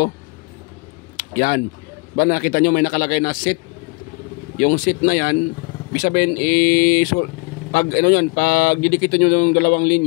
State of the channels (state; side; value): quieter; right; 29.9 dB